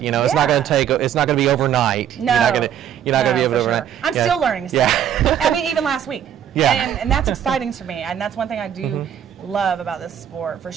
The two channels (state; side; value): quieter; left; 9.7 dB